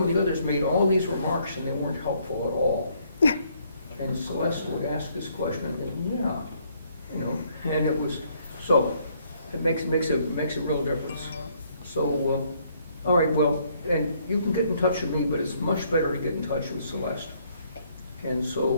of the others made all these remarks, and they weren't helpful at all. And Celeste would ask this question, and yeah, and it was, so, it makes a real difference. So, all right, well, and you can get in touch with me, but it's much better to get in touch with Celeste. And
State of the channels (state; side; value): inverted; both; correlation -0.67